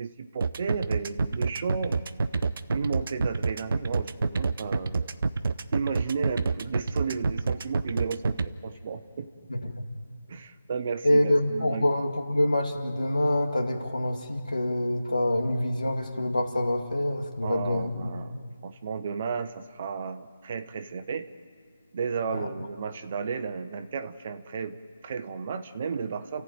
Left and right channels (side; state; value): both; inverted; correlation -0.90